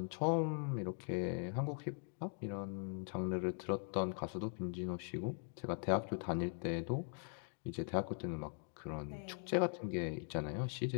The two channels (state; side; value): silent; right; 50 dB below the other